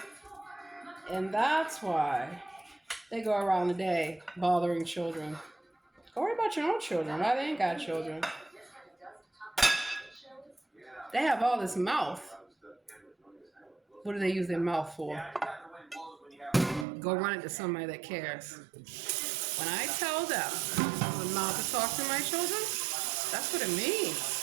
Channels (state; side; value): drops out; left; at 16.9 s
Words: And that's why they go around the day bothering children. Go worry about your own children. Why they ain't got children? They have all this mouth. What do they use their mouth for? Go run it to somebody that cares. When I tell them I'm not to talk to my children, that's what it means.